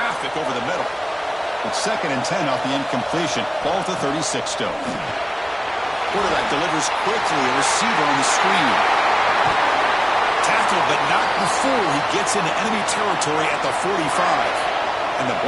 over the middle. It's 2nd and 10 off the incompletion. Ball to 36 still. Quarterback delivers quickly. A receiver on the screen. Tackled, but not before he gets into enemy territory at the 45. And the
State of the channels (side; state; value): both; identical; correlation 1.00